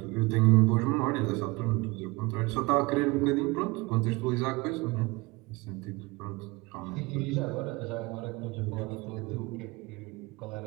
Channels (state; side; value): quieter; left; 24.2 dB